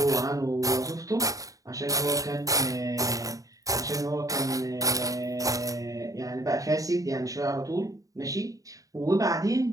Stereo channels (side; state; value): left; late; 0.16 ms